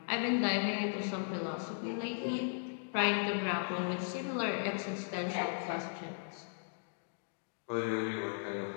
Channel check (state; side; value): silent; right; digital silence